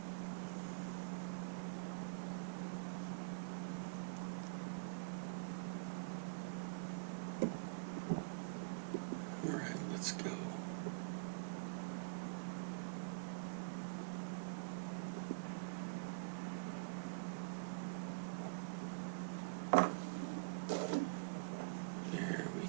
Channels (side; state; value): left; quieter; 34.9 dB